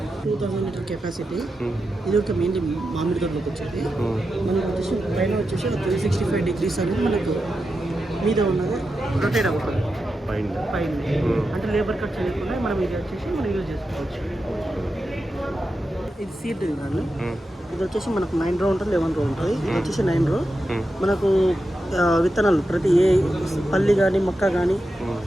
2000 లీటర్ కెపాసిటీ. ఇది ఒక మెయిన్లీ మామిడి తోటలోకి వచ్చేది. మనకు వచ్చేసి పైన వచ్చేసి 365 degrees అనేది మనకు మీద ఉన్నది రొటేట్ అవుతుంది పైన. అంటే లేబర్ కట్ చేయకుండా మనం ఇది వచ్చేసి మనం యూజ్ చేసుకోవచ్చు. ఇది సీడ్ కానీ ఇది వచ్చేసి మనకు 9 రో ఉంటుంది, 11 రో ఉంటుంది. ఇది వచ్చేసి 9 రో. మనకు విత్తనాలు ప్రతి ఏ పల్లి కానీ మొక్క కానీ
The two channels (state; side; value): normal; both; correlation 0.89